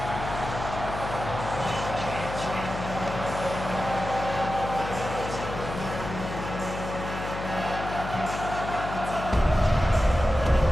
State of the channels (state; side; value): noise; left; hum, 7 dB below the sound